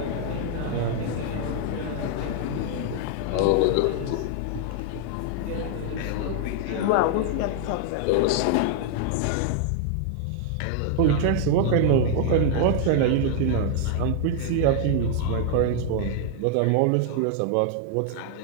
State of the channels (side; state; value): both; different; correlation 0.00